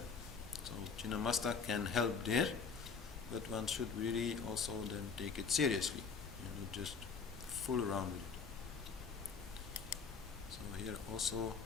So Chinnamasta can help there, but one should really also then take it seriously, not just fool around with it. So here also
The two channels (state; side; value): quieter; right; 5.4 dB